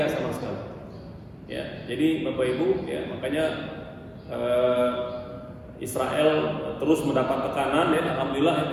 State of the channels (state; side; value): identical; both; correlation 1.00